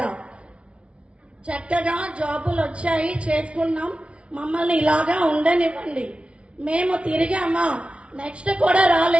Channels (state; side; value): late; left; 0.060 ms